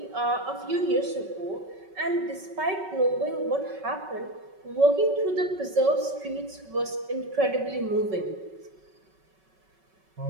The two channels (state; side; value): late; left; 5.3 ms